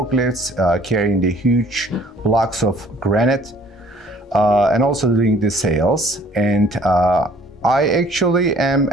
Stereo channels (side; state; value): both; normal; correlation 0.56